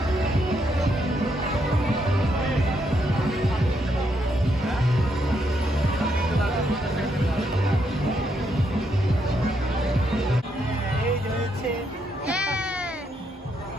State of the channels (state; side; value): normal; both; correlation 0.77